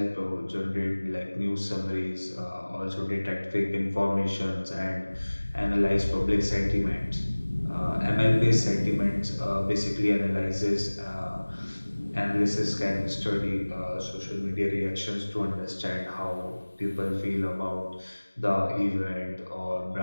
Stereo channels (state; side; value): inverted; both; correlation -1.00